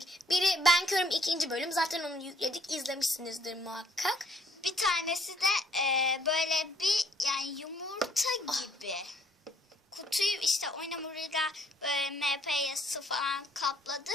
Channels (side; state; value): both; normal; correlation 0.63